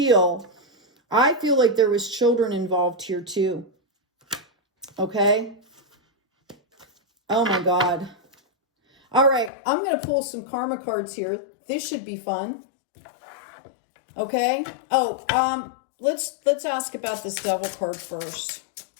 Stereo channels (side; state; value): right; drops out; at 9.5 s